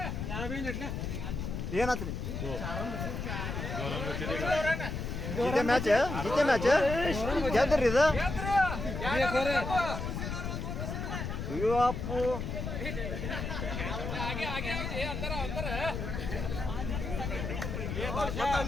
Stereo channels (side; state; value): left; noise; rumble, 4 dB below the sound